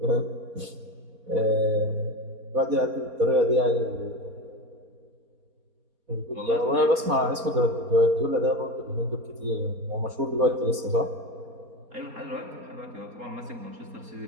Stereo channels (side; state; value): left; late; 4.3 ms